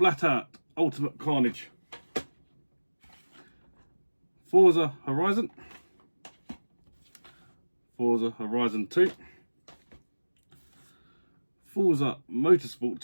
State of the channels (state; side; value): inverted; both; correlation -1.00